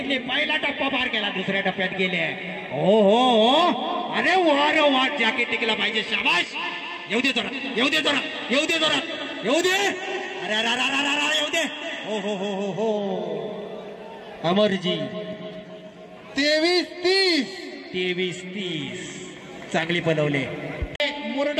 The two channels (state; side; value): identical; both; correlation 1.00